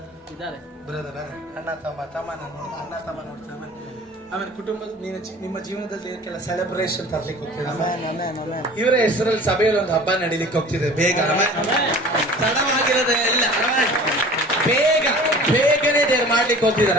ಇದ್ದಾರೆ? ಬ್ರದರ್ ಅಣ್ಣ ತಮ್ಮ ಅಣ್ಣ ತಮ್ಮ ನೋಡ್ತಾರೆ. ಆಮೇಲೆ ಕುಟುಂಬದ ನಿಮ್ಮ ಜೀವನದಲ್ಲಿ ಕೆಲ ಸೆಲೆಬ್ರೇಷನ್ ತರ್ಲಿಕ್ಕೆ ಹೋಗ್ತಿದೆ. ಇವರ ಹೆಸರಲ್ಲಿ ಸಭೆಯಲ್ಲಿ ಒಂದು ಹಬ್ಬ ನಡೀಲಿಕ್ಕೆ ಹೋಗ್ತಿದೆ. ಬೇಗ ತಡವಾಗಿರೋದೇ ಇಲ್ಲ, ಬೇಗನೆ ದೇವ್ರು ಮಾಡ್ಲಿಕ್ಕೆ ಹೋಗ್ತಿದಾರ.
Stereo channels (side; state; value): both; normal; correlation 0.43